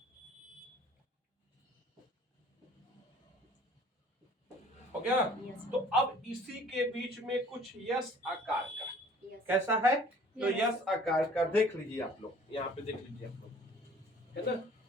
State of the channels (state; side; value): normal; both; correlation 0.52